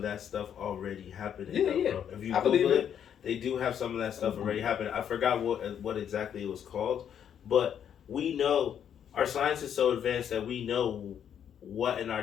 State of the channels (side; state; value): right; quieter; 8.9 dB